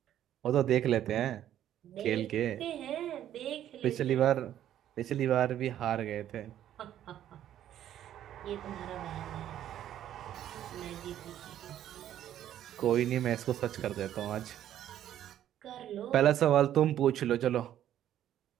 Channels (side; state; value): left; quieter; 11.4 dB